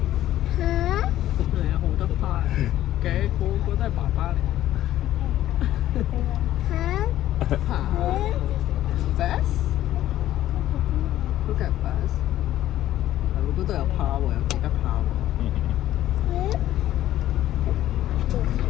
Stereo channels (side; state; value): right; quieter; 13.2 dB